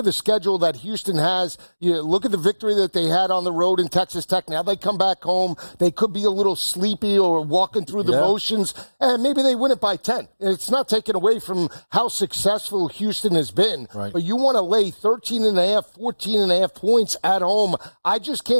the schedule that Houston has, you look at the victory that they had on the road in Texas Tech. Now they come back home, they could be a little sleepy or walking through the motions, and maybe they win it by 10. It's not taken away from how successful Houston has been, but you want to lay 13.5, 14.5 points at home. I just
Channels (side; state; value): both; inverted; correlation -1.00